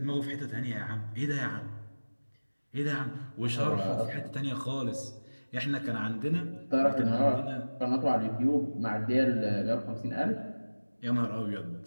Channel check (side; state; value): both; inverted; correlation -1.00